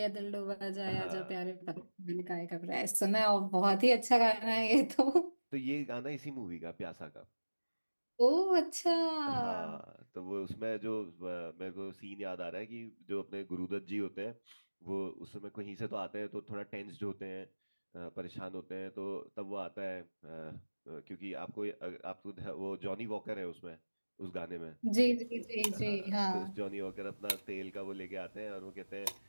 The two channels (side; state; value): both; inverted; correlation -1.00